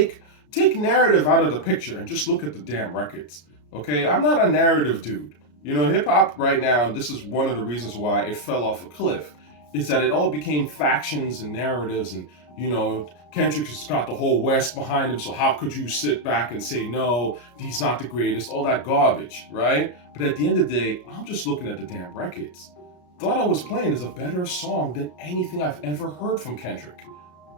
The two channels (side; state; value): right; late; 33 ms